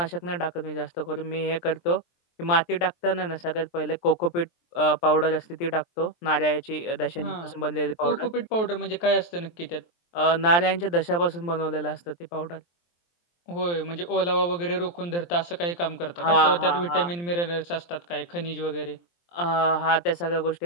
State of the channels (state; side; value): late; right; 23 ms